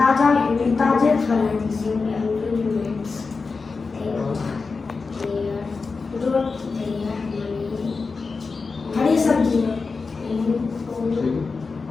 फल हरी सब्जी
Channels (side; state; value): right; quieter; 4.4 dB